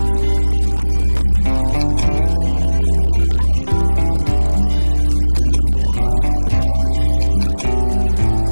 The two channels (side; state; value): both; inverted; correlation -1.00